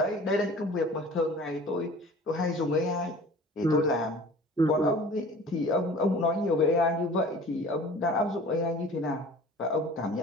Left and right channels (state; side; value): normal; both; correlation 0.44